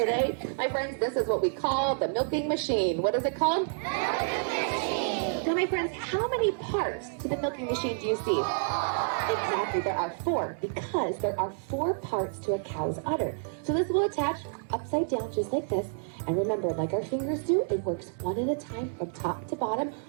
My friends, this is what we call the milking machine. What is it called? Milking machine. Now, my friends, how many parts to the milking machine do you see? Exactly, there are 4, because there are 4 parts to a cow's udder. So this will attach upside down just like this. And remember, like our fingers do, it works one at a time from top to bottom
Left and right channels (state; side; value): silent; left; digital silence